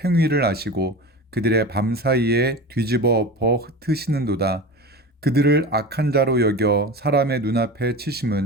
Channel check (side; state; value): both; normal; correlation 0.30